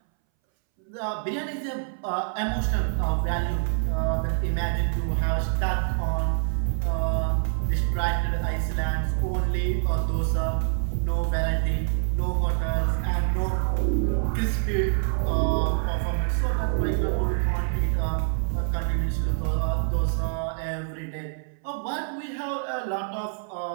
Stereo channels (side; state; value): left; silent; 61 dB below the other